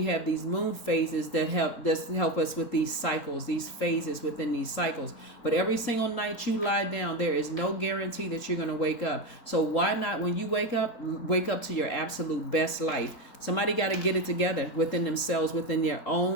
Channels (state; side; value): late; right; 3.8 ms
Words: have these moon phases that help us with these cycles, these phases within these cycles. But every single night you lie down, there is no guarantee that you're going to wake up. So why not, when you wake up to your absolute best life? Somebody got to get it together within themselves, within their